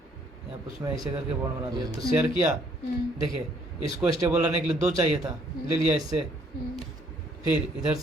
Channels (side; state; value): both; normal; correlation 0.65